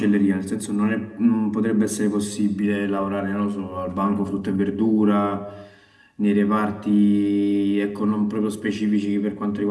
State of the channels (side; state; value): both; identical; correlation 1.00